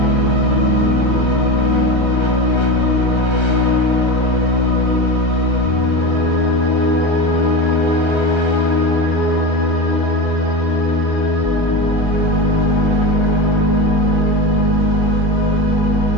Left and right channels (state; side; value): late; right; 1.3 ms